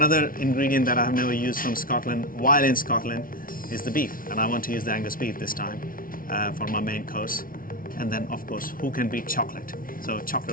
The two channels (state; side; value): late; right; 0.41 ms